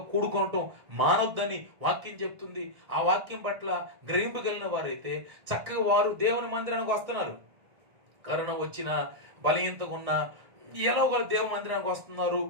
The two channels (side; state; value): left; late; 1.6 ms